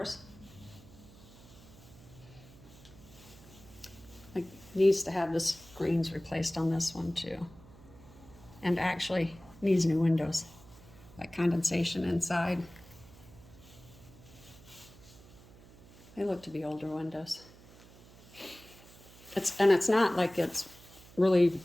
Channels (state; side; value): noise; right; hum, 22 dB below the sound